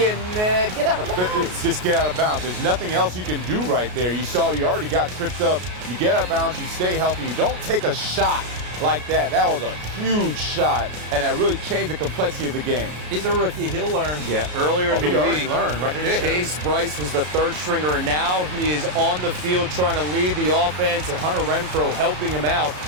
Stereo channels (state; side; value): late; left; 33 ms